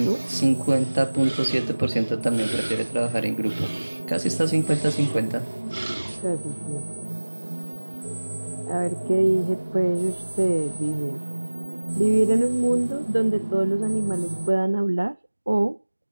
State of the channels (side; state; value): both; inverted; correlation -1.00